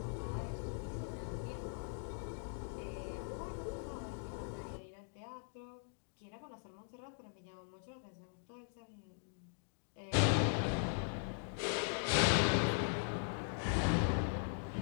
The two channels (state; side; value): silent; right; digital silence